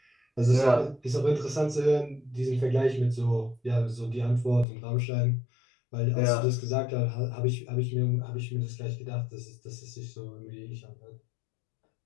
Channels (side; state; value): right; drops out; at 4.7 s